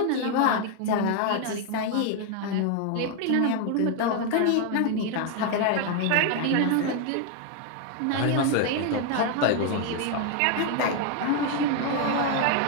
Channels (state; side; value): different; both; correlation 0.01